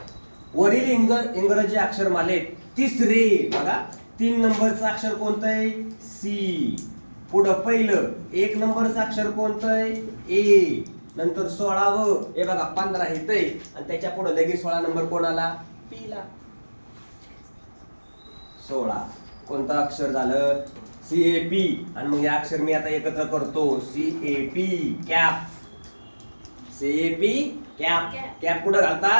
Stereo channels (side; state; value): both; inverted; correlation -1.00